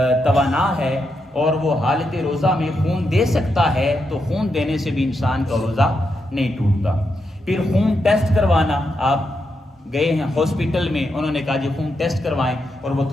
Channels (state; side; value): normal; both; correlation 0.83